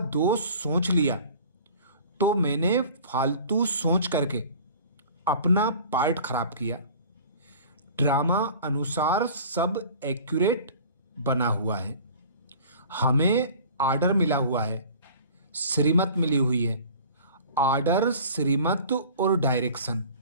दोष सोच लिया तो मैंने फालतू सोच करके अपना पार्ट खराब किया। ड्रामा अनुसार सब एक्यूरेट बना हुआ है। हमें आर्डर मिला हुआ है, श्रीमत मिली हुई है। आर्डर, श्रीमत और डायरेक्शन।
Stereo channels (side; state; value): both; inverted; correlation -0.44